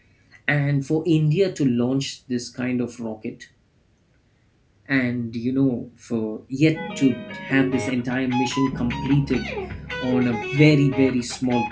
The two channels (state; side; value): identical; both; correlation 1.00